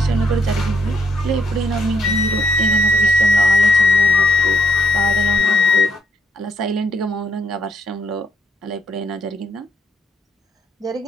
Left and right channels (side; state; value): both; normal; correlation 0.73